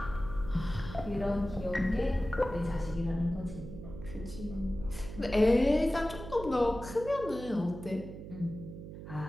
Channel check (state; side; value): noise; right; hum, 11 dB below the sound